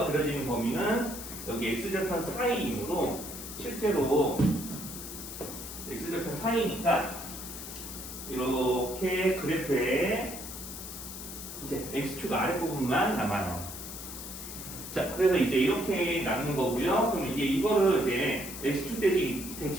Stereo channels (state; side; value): noise; left; hiss, 10 dB below the sound